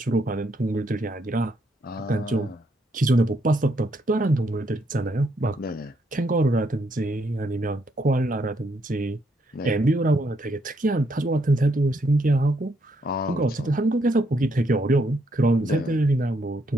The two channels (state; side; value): normal; both; correlation 0.74